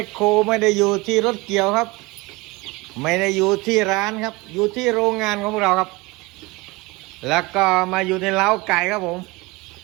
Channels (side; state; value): left; quieter; 23.7 dB